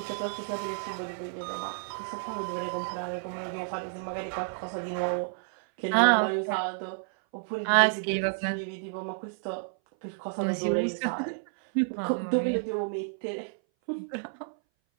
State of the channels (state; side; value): silent; left; 57 dB below the other